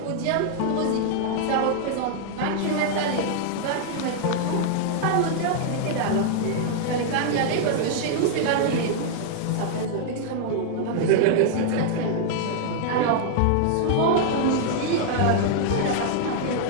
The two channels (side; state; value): both; different; correlation -0.01